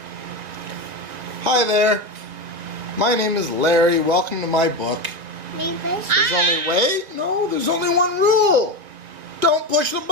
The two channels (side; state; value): left; late; 1.8 ms